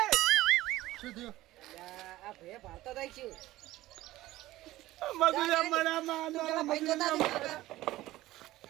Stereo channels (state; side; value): quieter; left; 16.7 dB